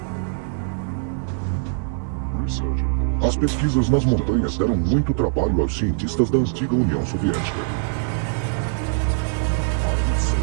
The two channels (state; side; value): silent; left; 64 dB below the other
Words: As pesquisas nas montanhas deram muito trabalho aos cientistas da antiga União Soviética.